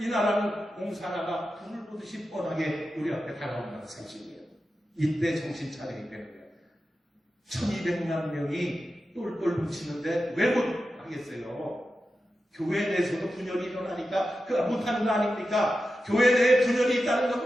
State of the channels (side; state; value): both; normal; correlation 0.91